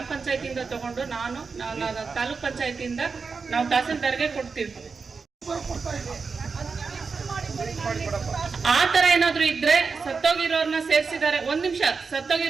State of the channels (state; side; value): quieter; left; 4.9 dB